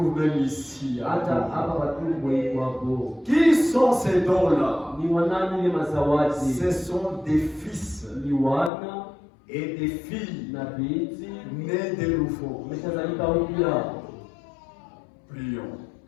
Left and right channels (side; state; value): right; drops out; at 8.7 s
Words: même ici. Qui sont ces dons-là? Ce sont des fils et des filles nés de nouveau. Prions.